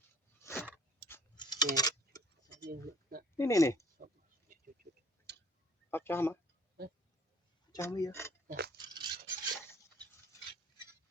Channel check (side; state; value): both; normal; correlation 0.55